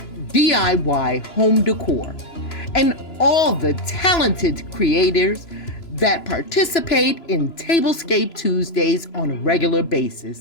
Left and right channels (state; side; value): late; right; 3.0 ms